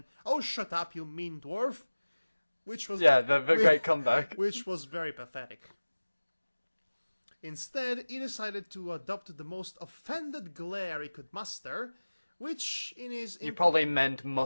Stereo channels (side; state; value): both; inverted; correlation -1.00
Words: "Oh, shut up, you mean dwarf," which was the great comeback, which was very pathetic. Instead, he decided to adopt the most offended glare he could muster, which in his... You probably meant